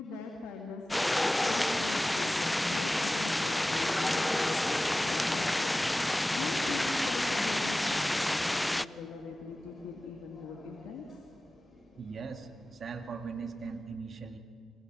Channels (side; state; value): both; normal; correlation 0.96